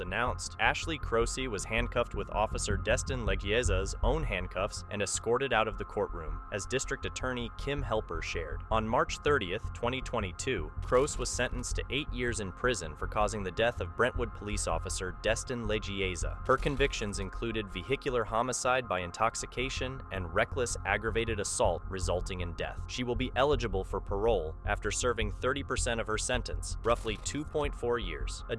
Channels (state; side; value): identical; both; correlation 1.00